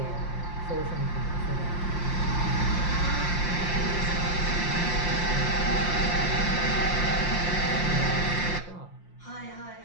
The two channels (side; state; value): right; late; 5.7 ms